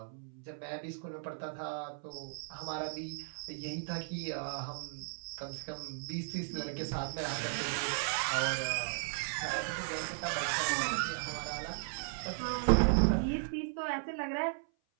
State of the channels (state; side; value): silent; left; 54 dB below the other